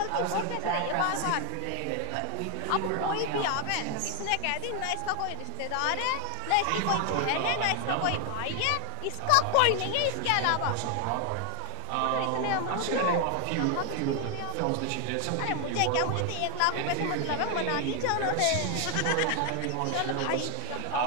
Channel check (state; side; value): different; both; correlation 0.00